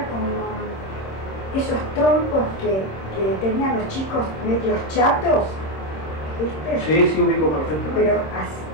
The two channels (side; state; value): right; late; 26 ms